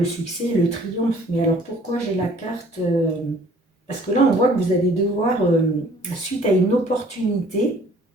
succès, le triomphe. Mais alors pourquoi j'ai la carte parce que là, on voit que vous allez devoir, suite à une opportunité,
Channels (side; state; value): both; normal; correlation 0.55